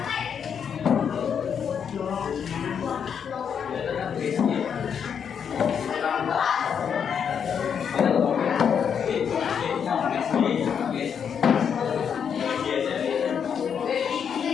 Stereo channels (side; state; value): right; quieter; 7.4 dB